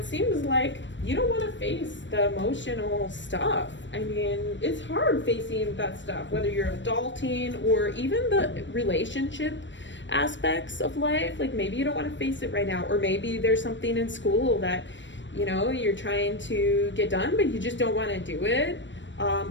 seems like you don't want to face the emotional stuff. It's hard facing that stuff, whether you're adulting or even the relationship aspects of life. Like maybe you don't want to face it right now, or maybe there's something in school that, you're trying to get done, but you just don't want to do it.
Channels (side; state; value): right; late; 0.54 ms